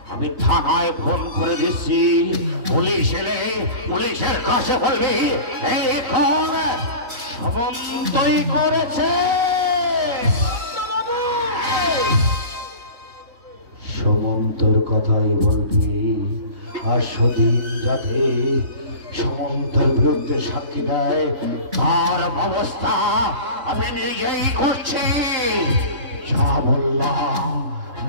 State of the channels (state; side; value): late; left; 3.1 ms